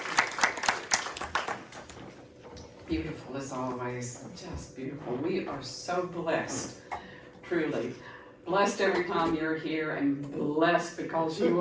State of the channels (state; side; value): identical; both; correlation 1.00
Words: Beautiful as always, just beautiful. We are so blessed, truly. Blessed every time you're here, and blessed because you